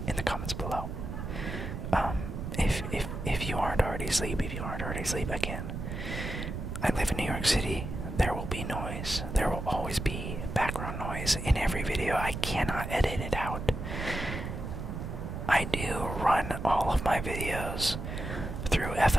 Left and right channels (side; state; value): right; noise; rumble, 5 dB below the sound